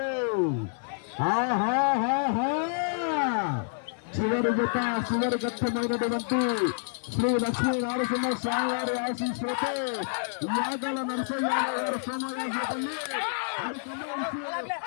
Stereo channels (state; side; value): silent; right; 58 dB below the other